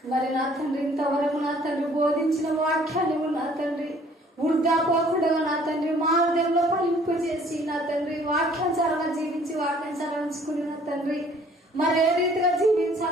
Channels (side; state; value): both; normal; correlation 0.57